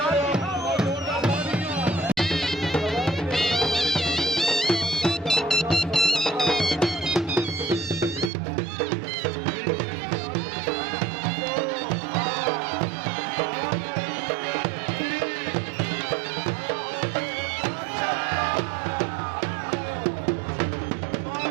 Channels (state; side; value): drops out; left; at 8.3 s